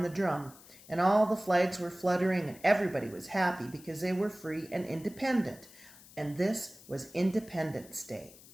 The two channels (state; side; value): noise; left; hiss, 21 dB below the sound